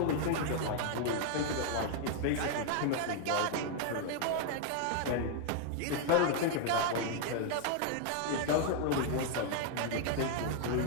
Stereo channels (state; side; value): different; both; correlation 0.00